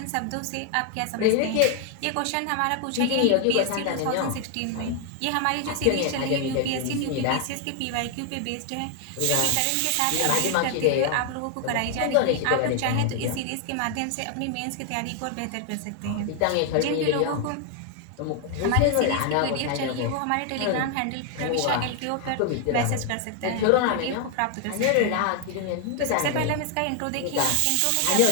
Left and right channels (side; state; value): both; different; correlation 0.00